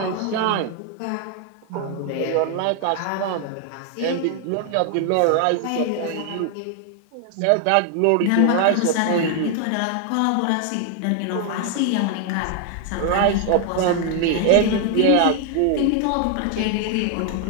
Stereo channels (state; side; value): different; both; correlation 0.00